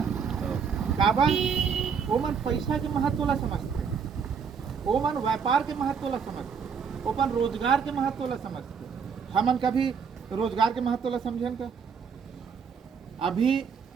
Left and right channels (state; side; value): quieter; left; 6.4 dB